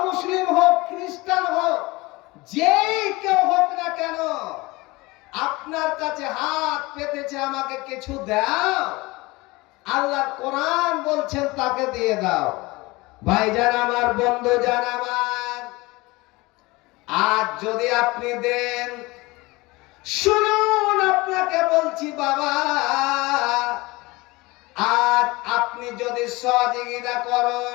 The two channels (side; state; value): right; quieter; 22.5 dB